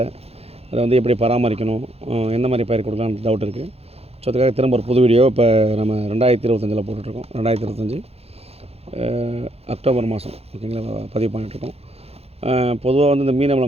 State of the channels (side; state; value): left; late; 0.29 ms